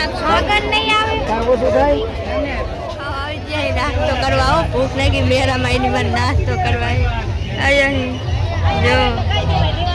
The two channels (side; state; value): both; identical; correlation 1.00